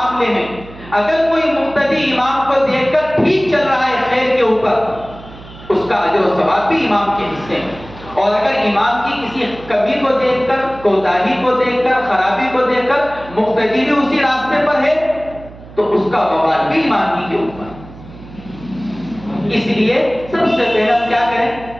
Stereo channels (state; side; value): noise; right; hum, 18 dB below the sound